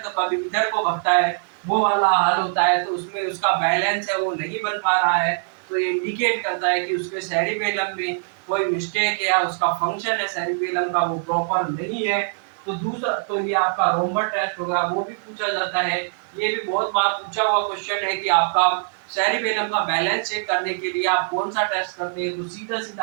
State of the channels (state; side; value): silent; left; 64 dB below the other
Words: कभी इधर को भगता है, वो वाला हाल होता है। तो उसमें उसका बैलेंस है वो नहीं बन पा रहा है, तो ये इंडिकेट करता है कि उसके सेरिबेलम में कोई मिस्टेक है या उसका फंक्शन है सेरिबेलम का वो प्रॉपर नहीं है। तो दूसरा तो ये आपका रोमबर्ग टेस्ट होगा, वो भी पूछा जाता है। ये भी बहुत बार पूछा हुआ क्वेश्चन है कि आपका सेरिबेलम का बैलेंस चेक करने के लिए आप कौन सा टेस्ट करते हैं, तो सीधा